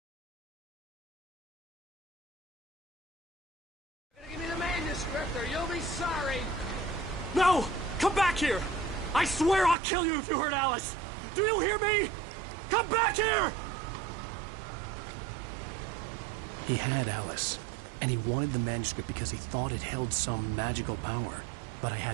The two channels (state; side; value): drops out; left; at 9.8 s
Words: Give me the manuscript or you'll be sorry. No! Come back here! I swear I'll kill you if you hurt Alice! Do you hear me? Come back here! He had Alice, and he wanted the manuscript because he thought it held some magical power. But I